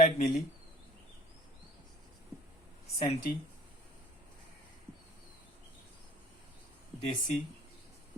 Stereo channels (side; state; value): both; normal; correlation 0.49